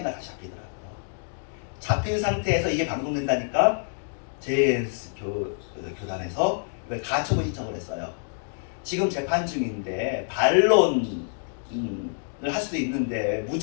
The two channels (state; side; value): silent; right; digital silence